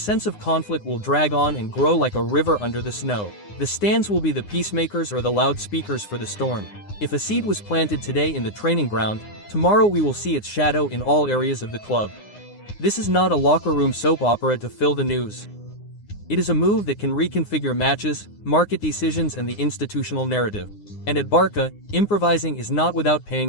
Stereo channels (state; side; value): late; right; 9.7 ms